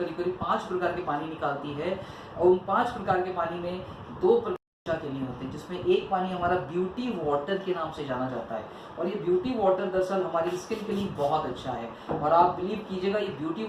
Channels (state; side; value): identical; both; correlation 1.00